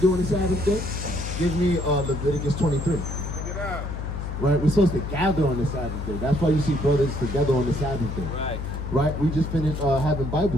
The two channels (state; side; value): noise; left; hum, 5 dB below the sound